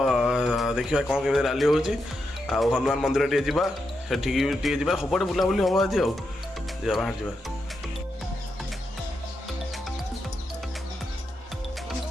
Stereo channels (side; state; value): both; normal; correlation 0.85